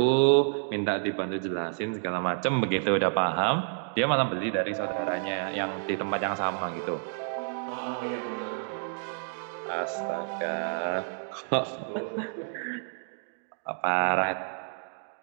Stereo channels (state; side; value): silent; left; digital silence